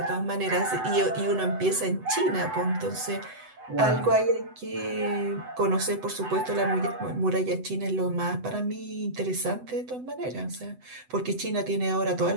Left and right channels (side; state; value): left; late; 8.0 ms